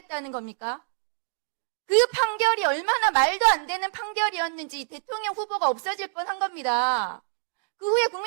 겁니까? 그 판결이 얼마나 말도 안 되는 판결이었는지 대통령 후보가 없어질 뻔한 겁니다. 그 후에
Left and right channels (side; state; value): left; silent; digital silence